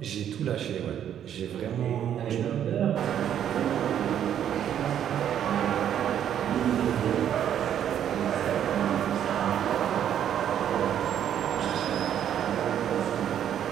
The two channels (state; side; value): quieter; left; 9.9 dB